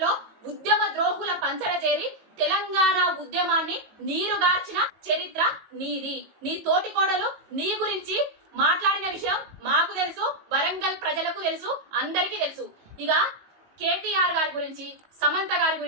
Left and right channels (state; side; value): late; left; 19 ms